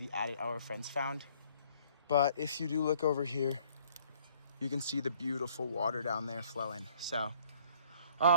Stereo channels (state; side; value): inverted; both; correlation -0.60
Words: adit our friends found. But if you do look over here, you can see the beautiful water down there flowing. So